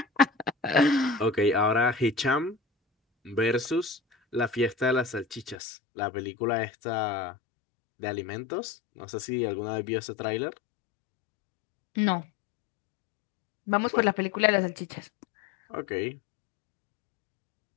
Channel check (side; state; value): right; drops out; at 5.6 s